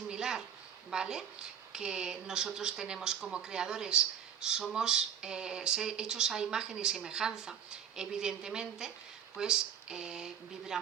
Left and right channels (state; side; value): quieter; left; 8.6 dB